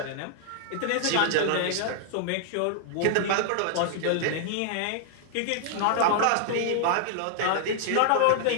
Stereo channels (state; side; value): different; both; correlation -0.01